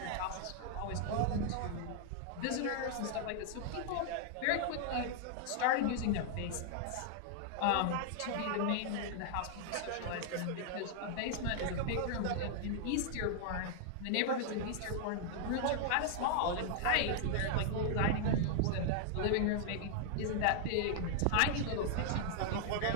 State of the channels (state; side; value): different; both; correlation 0.00